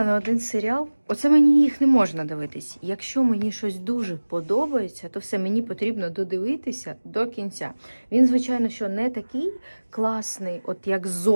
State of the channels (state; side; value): inverted; both; correlation -1.00